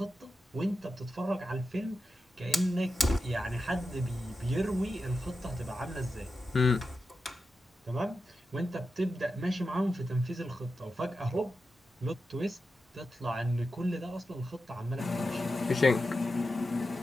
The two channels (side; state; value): both; normal; correlation 0.90